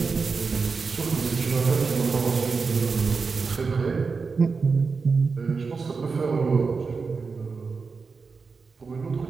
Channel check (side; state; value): left; quieter; 4.8 dB